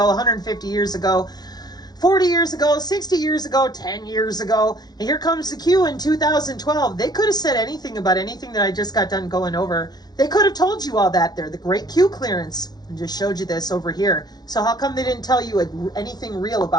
150 years ago, 40 years ago, 60 years ago, 10 years ago. And here comes the Q in 2012. They could have said anything about anything that I just got done going over. They could have told you all that there. The great Q clearance. And just showed you this over here. So how come they didn't tell you anything real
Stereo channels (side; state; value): right; late; 0.19 ms